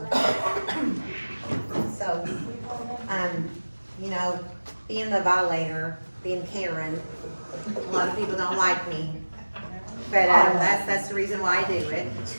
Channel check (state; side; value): inverted; both; correlation -1.00